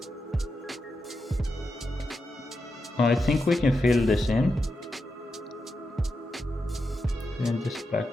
I think we can fill this in this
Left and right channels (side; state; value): both; normal; correlation 0.87